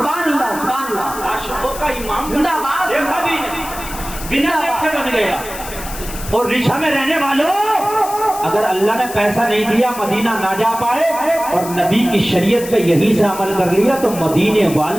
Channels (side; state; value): left; noise; hiss, 12 dB below the sound